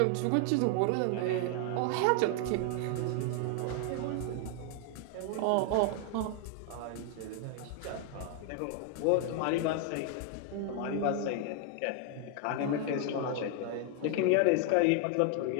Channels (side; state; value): both; different; correlation 0.00